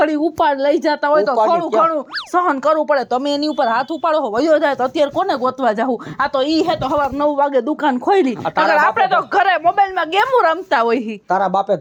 ઉપાડ લઈ જતા હોય તો ઉપાડી થોડું ઘણું સહન કરવું પડે તમે એની ઉપર હાથ ઉપાડો હો વયો જાય તો અત્યારે કોને ગોતવા જાવું આ તો ઈ હે તો સવાર 9 વાગે દુકાન ખોલી આ તારા અગર આપણે તો ઘરે મોબાઈલમાં ગેમો રમતા હોય હી. તારા બાપે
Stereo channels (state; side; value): identical; both; correlation 1.00